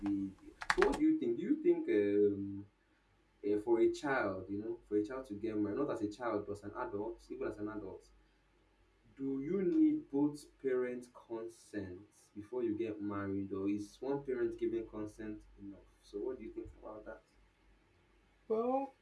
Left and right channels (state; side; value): identical; both; correlation 1.00